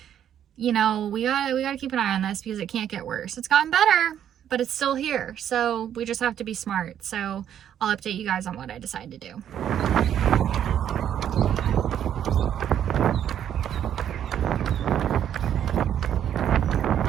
you know, we gotta keep an eye on this because it can't get worse. It's gotten better, but it's still here. So we just have to be smart. So I'll update you guys on what I decide to do.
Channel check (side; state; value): left; quieter; 9.9 dB